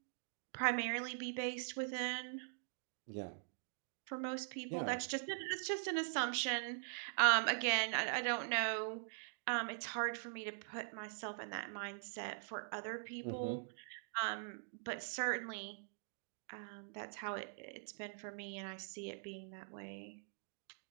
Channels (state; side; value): silent; left; digital silence